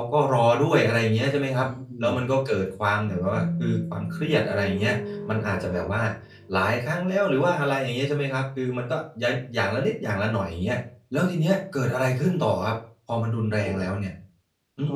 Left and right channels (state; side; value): identical; both; correlation 1.00